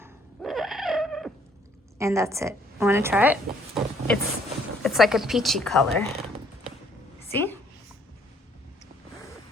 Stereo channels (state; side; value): normal; both; correlation 0.64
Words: and that's it. Want to try it? It's like a peachy color. See?